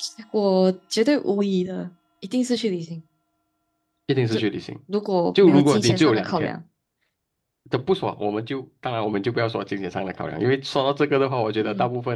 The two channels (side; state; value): both; identical; correlation 1.00